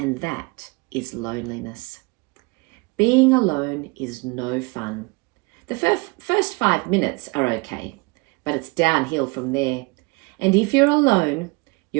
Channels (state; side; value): quieter; left; 26.3 dB